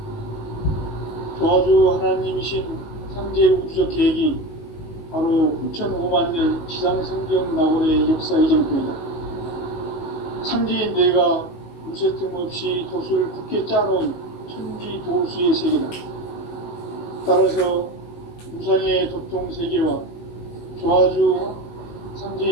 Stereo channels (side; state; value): right; late; 19 ms